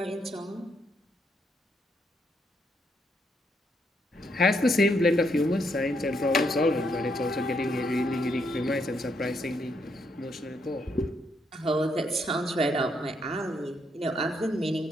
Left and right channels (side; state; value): both; normal; correlation 0.75